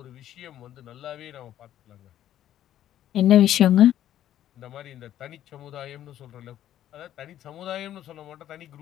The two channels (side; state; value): right; quieter; 11.8 dB